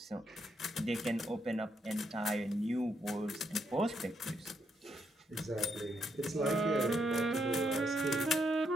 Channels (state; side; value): normal; both; correlation 0.78